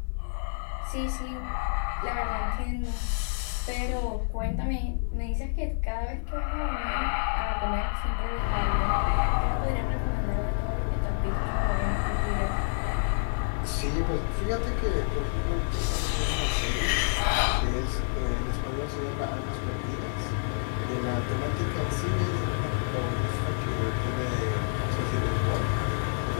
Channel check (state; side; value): silent; right; digital silence